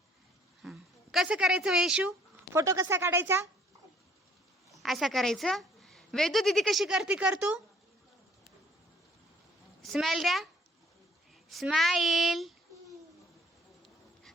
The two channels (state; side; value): normal; both; correlation 0.59